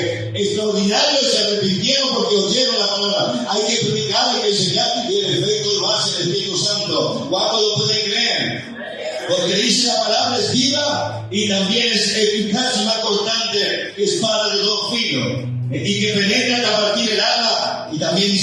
extraordinario y se arrepintieron porque oyeron la palabra. Hay que predicar, hay que enseñar y el efecto lo hace el Espíritu Santo. ¿Cuántos lo pueden creer? Porque dice la palabra es viva y también es eficaz y más cortante que espada de dos filos y que penetra hasta partir el alma y también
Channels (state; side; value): identical; both; correlation 1.00